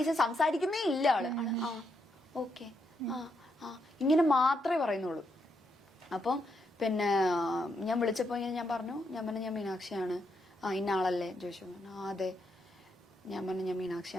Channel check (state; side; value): normal; both; correlation 0.79